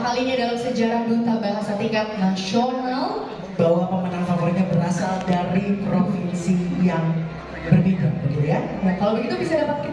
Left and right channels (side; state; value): both; identical; correlation 1.00